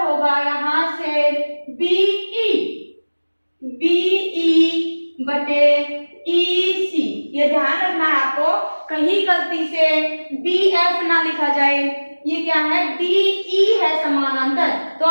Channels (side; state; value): both; inverted; correlation -1.00